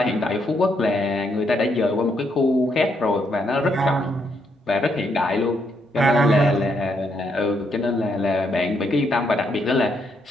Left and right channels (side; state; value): both; normal; correlation 0.76